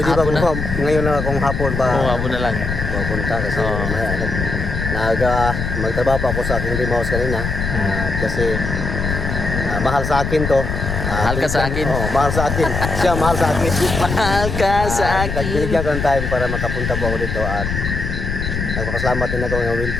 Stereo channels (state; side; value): noise; left; rumble, 3 dB below the sound